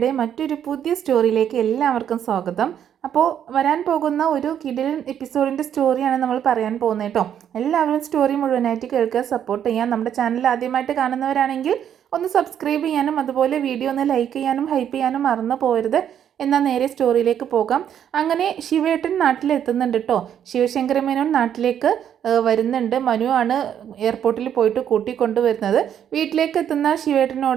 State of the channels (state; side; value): quieter; left; 9.4 dB